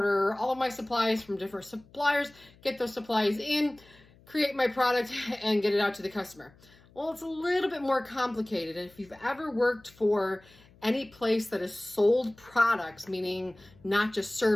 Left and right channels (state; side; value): noise; left; hum, 27 dB below the sound